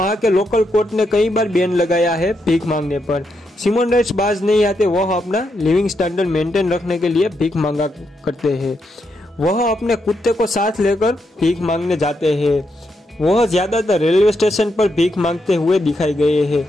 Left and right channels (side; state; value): both; normal; correlation 0.81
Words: के लोकल कोर्ट ने कई बार बैन लगाया है भीख मांगने पर। सिमोन राइट्स बाज नहीं आते। वह अपना लिविंग स्टैंडर्ड मेंटेन रखने के लिए भीख मांगा करते हैं। वह अपने कुत्ते को साथ लेकर भीख मांगने जाते हैं। वह ज्यादातर रेलवे स्टेशन पर भीख मांगते हुए दिखाई गए हैं,